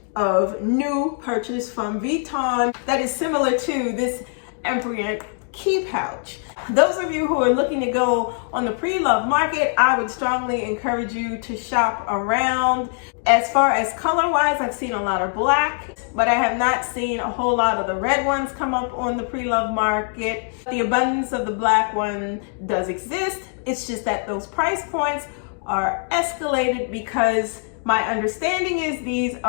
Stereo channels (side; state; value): right; silent; 55 dB below the other